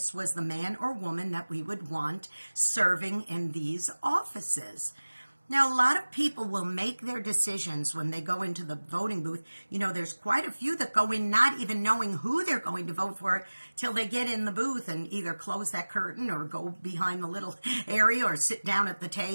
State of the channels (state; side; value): inverted; both; correlation -1.00